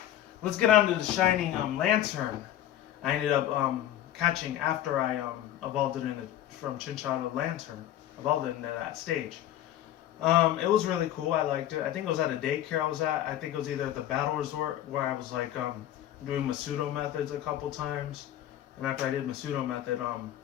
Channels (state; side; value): quieter; right; 12.3 dB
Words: let's get on to the Shining Lanturn. I ended up catching after I evolved it from Chinchou to Lanturn. Evolved it into that stage. It was really cool. I liked it. I think it was at a daycare I was at. I think it was either at the Battle Resort where I was like doing Masudo methods a couple times. And after I did Masudo method, I